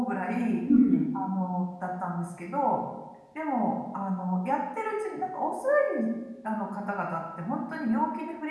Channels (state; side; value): identical; both; correlation 1.00